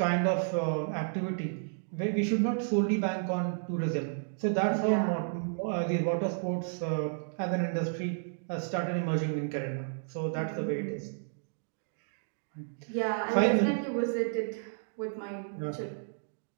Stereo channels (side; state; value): left; silent; digital silence